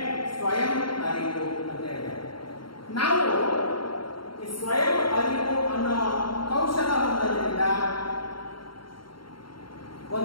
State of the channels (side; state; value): right; late; 0.73 ms